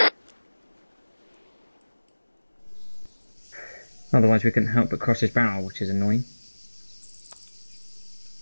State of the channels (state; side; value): inverted; both; correlation -1.00